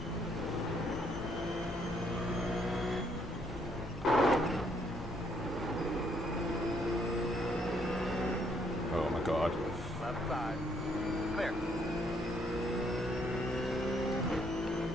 Oh my god. Left side. Clear.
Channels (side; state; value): both; normal; correlation 0.70